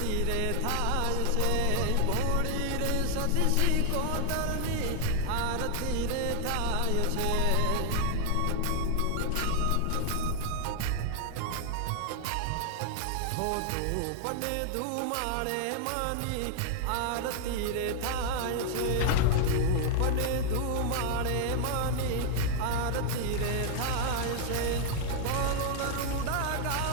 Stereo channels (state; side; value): different; both; correlation 0.00